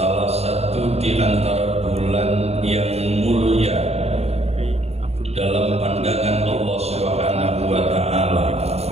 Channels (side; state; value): left; late; 0.30 ms